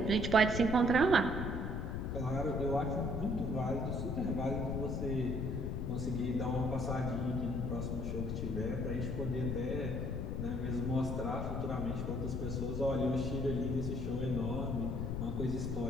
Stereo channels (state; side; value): noise; left; rumble, 2 dB below the sound